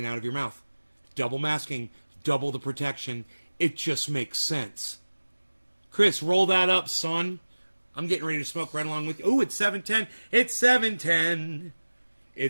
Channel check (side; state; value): both; inverted; correlation -1.00